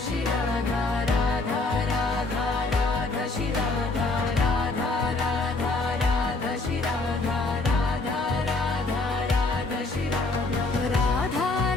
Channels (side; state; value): right; quieter; 3.3 dB